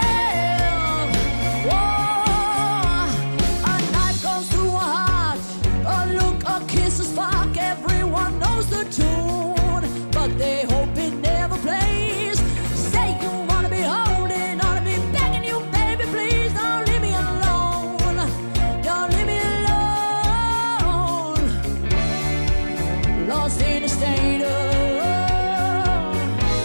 Whoa, a knife goes through a heart. A look, a kiss, a spark. Everyone knows the tune, but they hope it never plays. Say you wanna be holding on to me, begging you, baby, please don't leave me alone. Don't leave me alone. Lost in a state of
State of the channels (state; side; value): inverted; both; correlation -1.00